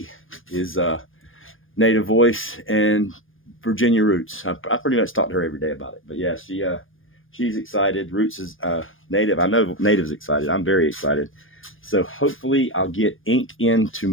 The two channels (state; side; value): late; right; 0.59 ms